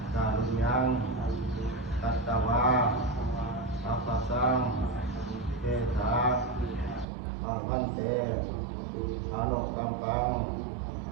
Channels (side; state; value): left; drops out; at 7.1 s